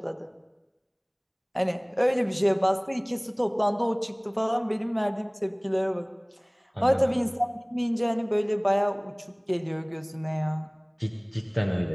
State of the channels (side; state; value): both; identical; correlation 1.00